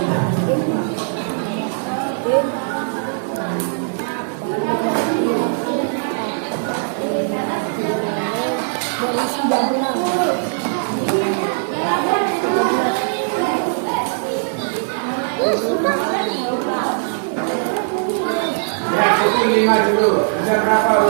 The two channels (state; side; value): silent; left; digital silence